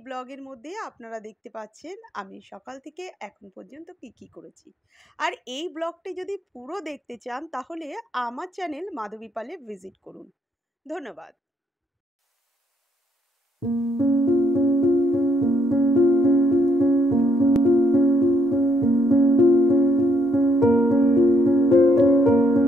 ব্লগের মধ্যে আপনারা দেখতে পাচ্ছেন আমি সকাল থেকে এখন পর্যন্ত কি করেছি। আর এই ব্লগটি যদি পুরো দেখতে চান তাহলে আমার চ্যানেল মাধবী পালে ভিজিট করুন। ধন্যবাদ।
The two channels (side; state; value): both; normal; correlation 0.71